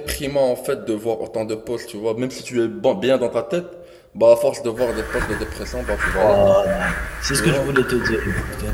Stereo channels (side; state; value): both; identical; correlation 1.00